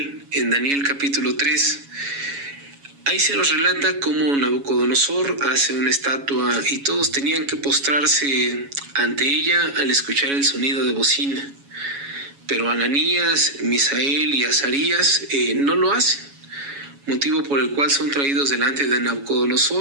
en Daniel capítulo 3. Ahí se nos relata cómo Nabucodonosor hace una estatua y todos tenían que postrarse ante ella al escuchar el sonido de bocina. Pero Ananías, Misael y Azarías no lo hacen, motivo por el cual son traídos delante de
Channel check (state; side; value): late; left; 7.2 ms